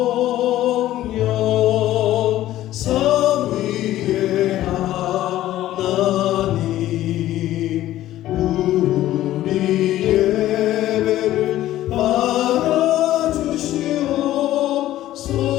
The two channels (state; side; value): quieter; right; 14.1 dB